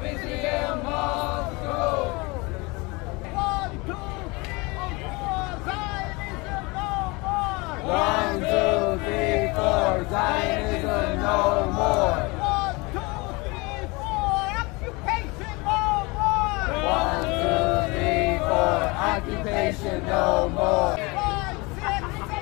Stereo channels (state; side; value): quieter; right; 25.9 dB